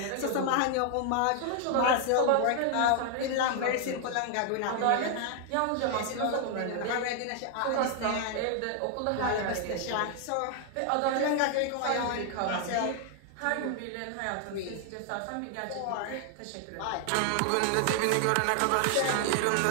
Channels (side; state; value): both; different; correlation 0.00